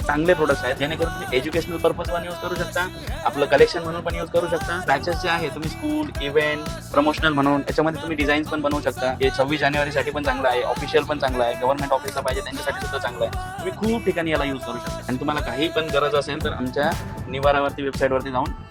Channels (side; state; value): both; identical; correlation 1.00